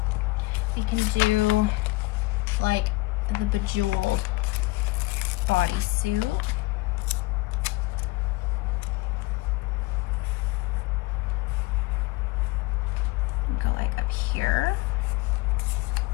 we can do like the bejeweled bodysuit. Go like up here.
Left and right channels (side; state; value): right; quieter; 21.6 dB